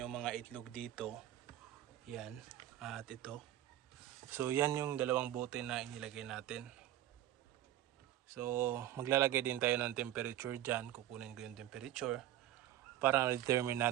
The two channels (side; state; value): left; quieter; 13.1 dB